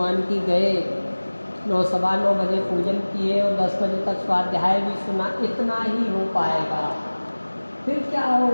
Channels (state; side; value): inverted; both; correlation -1.00